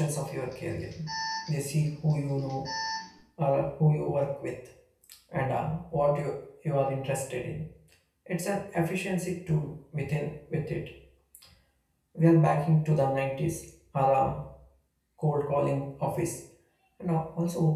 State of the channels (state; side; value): identical; both; correlation 1.00